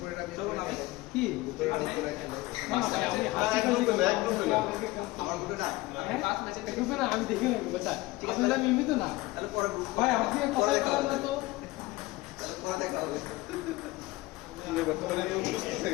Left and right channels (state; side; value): quieter; right; 19.9 dB